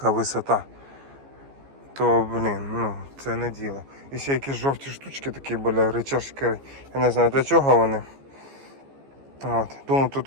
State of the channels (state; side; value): late; left; 15 ms